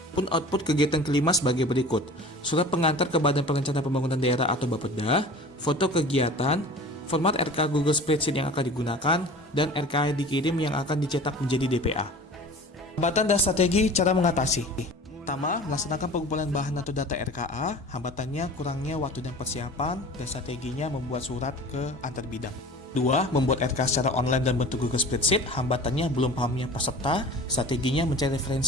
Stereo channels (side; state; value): both; normal; correlation 0.40